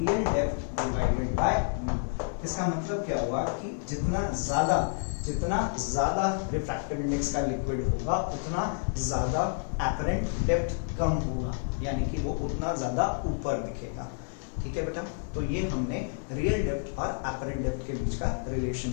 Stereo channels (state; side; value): silent; right; 58 dB below the other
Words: depth divided by mu. इसका मतलब क्या हुआ कि जितना ज्यादा रिफ्रैक्टिव इंडेक्स का लिक्विड होगा उतना ज्यादा एपरेंट डेप्थ कम होगा, यानी कि वो उतना ज्यादा ऊपर दिखेगा। ठीक है बेटा, तो ये हमने रियल डेप्थ और एपरेंट डेप्थ के बीच का रिलेशन